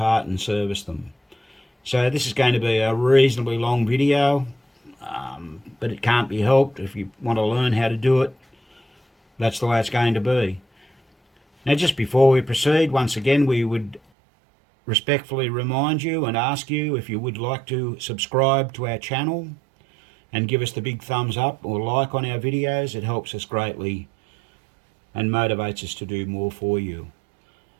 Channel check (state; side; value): drops out; left; at 14.0 s